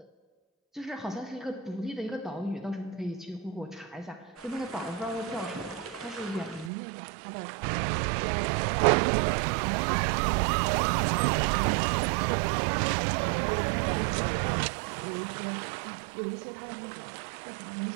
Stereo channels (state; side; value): drops out; left; at 6.7 s